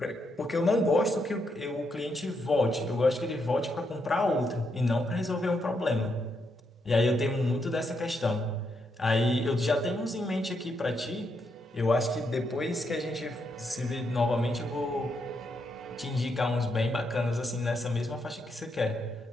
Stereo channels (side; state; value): both; normal; correlation 0.79